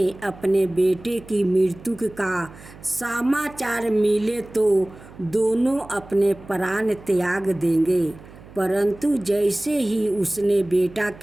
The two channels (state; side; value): noise; right; hum, 20 dB below the sound